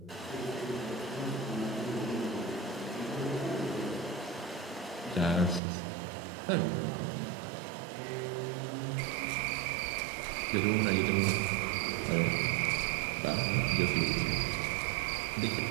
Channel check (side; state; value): left; drops out; at 5.6 s